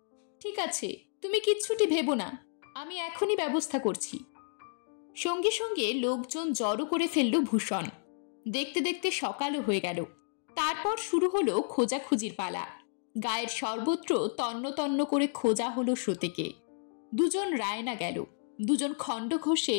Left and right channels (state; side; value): silent; right; digital silence